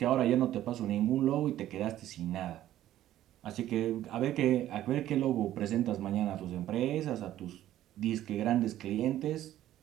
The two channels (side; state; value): left; quieter; 13.1 dB